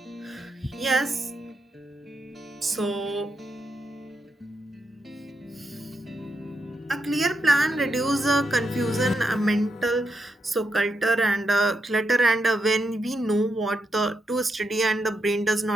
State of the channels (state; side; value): normal; both; correlation 0.83